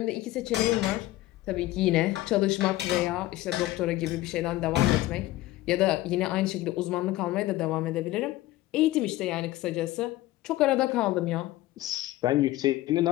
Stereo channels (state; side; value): quieter; right; 16.9 dB